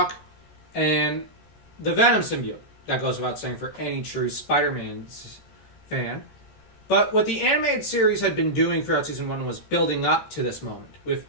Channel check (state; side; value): late; right; 13 ms